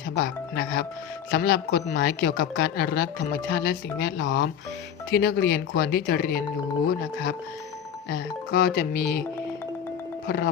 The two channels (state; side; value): quieter; right; 8.4 dB